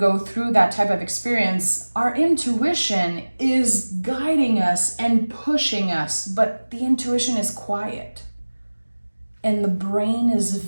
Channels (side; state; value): both; inverted; correlation -1.00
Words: through that type of experience, our intuition is guiding us and pushing us, but the intuition is quiet. And the brain is